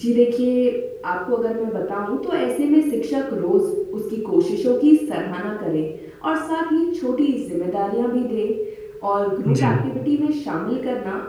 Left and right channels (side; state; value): both; identical; correlation 1.00